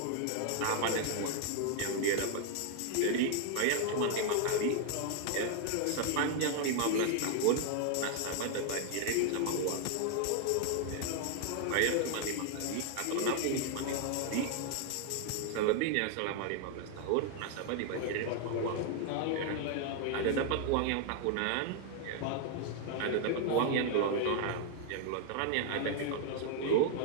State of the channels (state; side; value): different; both; correlation 0.00